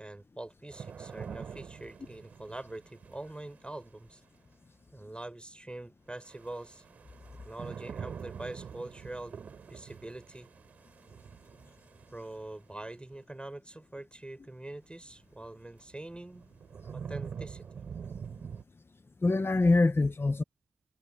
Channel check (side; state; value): both; normal; correlation 0.94